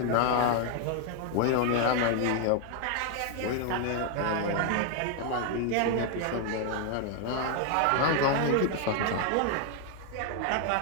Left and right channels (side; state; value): both; different; correlation 0.00